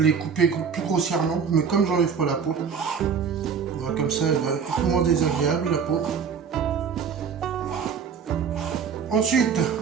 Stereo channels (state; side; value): quieter; left; 6.5 dB